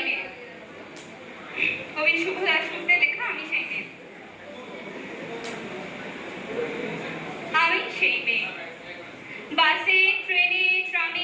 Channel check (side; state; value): both; identical; correlation 1.00